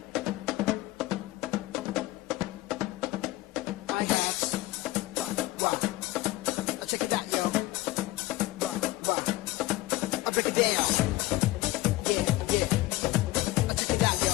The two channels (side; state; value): right; quieter; 18.3 dB